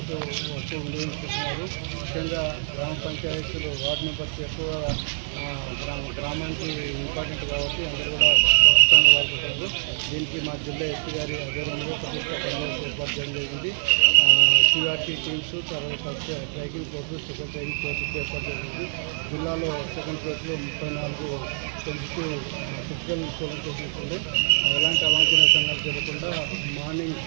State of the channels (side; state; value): left; silent; 62 dB below the other